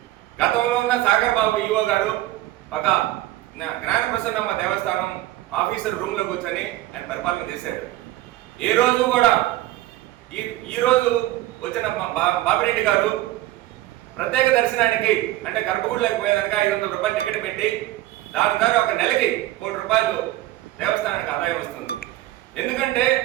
గతంలో ఉన్న సాగర్ బాబు ఈవో గారు ఒక జ్ఞాన ప్రసన్నమ్మ దేవస్థానం ఆఫీసర్ రూమ్లో కూర్చొని ఆయన పరిపాలన చేశాడు. ఈ రోజు కూడా ఈ రోజు వచ్చిన బాపిరెడ్డి గారు ప్రత్యేక దర్శనానికి అంటే గర్భగుడిలోకి పోయేదానికి 500 రూపాయలు టికెట్ పెట్టి దాని ద్వారా ఒక నెలకి 1 కోటి రూపాయలు దేవస్థానానికి ఆదాయం వస్తుంది. ఎందుకంటే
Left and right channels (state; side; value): quieter; left; 16.0 dB